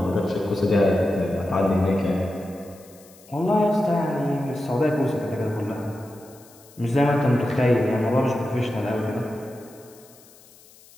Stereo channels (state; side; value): noise; left; hiss, 25 dB below the sound